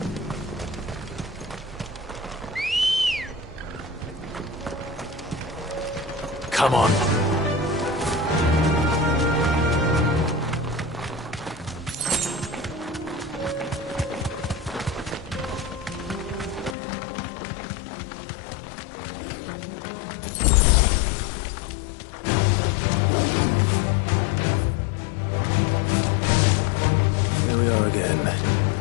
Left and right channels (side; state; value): right; drops out; at 16.8 s